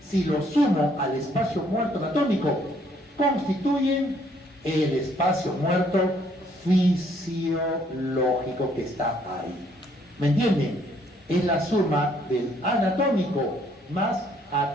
si lo sumo al espacio muerto anatómico, constituyen el espacio muerto fisiológico que está ahí. ¿Me entienden? Es la suma del anatómico más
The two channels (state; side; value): normal; both; correlation 0.66